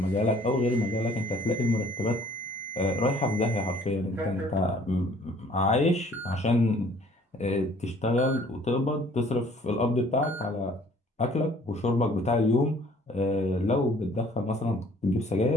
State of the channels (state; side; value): normal; both; correlation 0.56